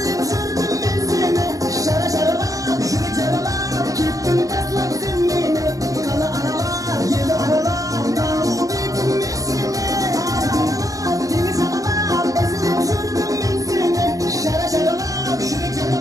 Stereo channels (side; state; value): left; late; 0.17 ms